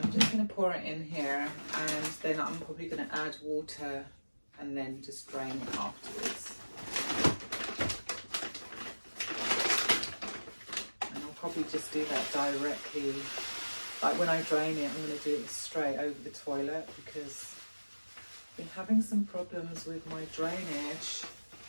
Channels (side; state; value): both; inverted; correlation -1.00